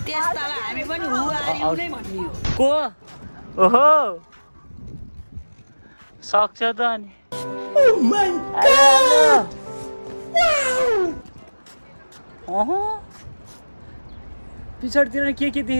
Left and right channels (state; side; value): inverted; both; correlation -1.00